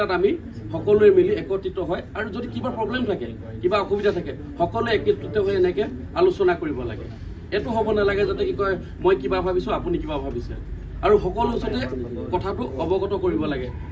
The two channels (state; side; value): identical; both; correlation 1.00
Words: আমি সকলোৱে মিলি একত্ৰিত হয় আৰু যদি কিবা প্ৰব্লেম থাকে, কিবা অসুবিধা থাকে, সকলোৱে একত্ৰিত হৈ এনেকৈ আলোচনা কৰিব লাগে। এইটো হ'ব নালাগে যাতে কি কয় মই কিবা ভাবিছোঁ আপুনি কিবা ভাবিছে। আৰু সকলো ওচৰতে কথাটো অৱগত কৰিব লাগে